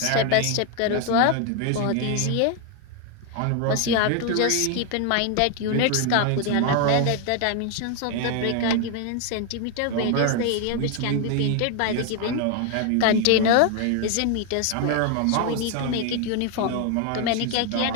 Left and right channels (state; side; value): different; both; correlation 0.01